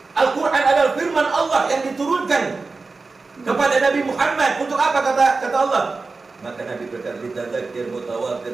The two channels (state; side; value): quieter; left; 4.0 dB